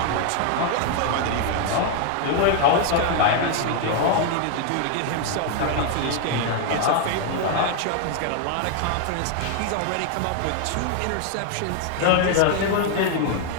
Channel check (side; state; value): both; different; correlation 0.00